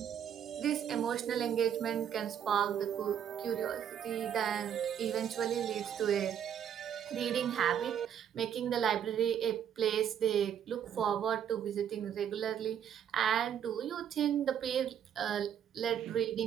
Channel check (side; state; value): left; quieter; 9.1 dB